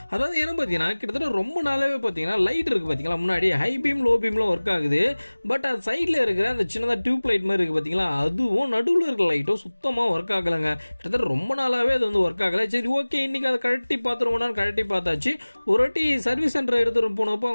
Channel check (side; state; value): both; inverted; correlation -1.00